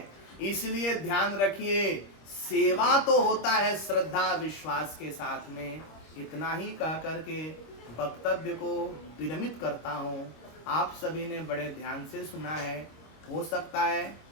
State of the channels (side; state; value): right; late; 26 ms